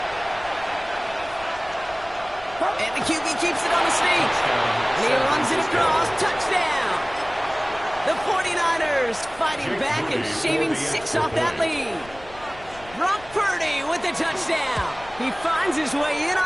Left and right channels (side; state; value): left; noise; rumble, 21 dB below the sound